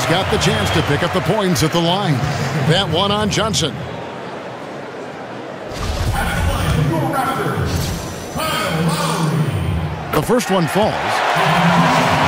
got the chance to pick up the points at the line. That one on Johnson. The first one falls.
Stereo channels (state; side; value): identical; both; correlation 1.00